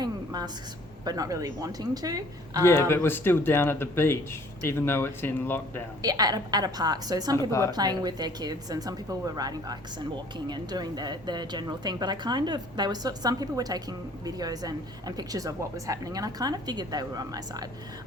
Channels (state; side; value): normal; both; correlation 0.55